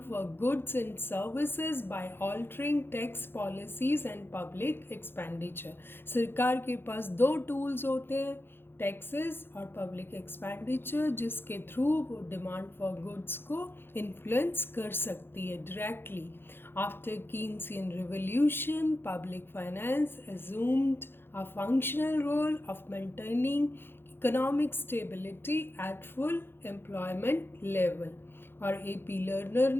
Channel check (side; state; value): right; late; 0.10 ms